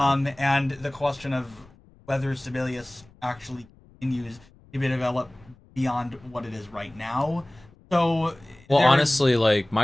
And the question of whether Sibelius actually continues to be developed beyond what it is right now. So, well, honestly, like,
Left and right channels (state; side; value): noise; left; rumble, 27 dB below the sound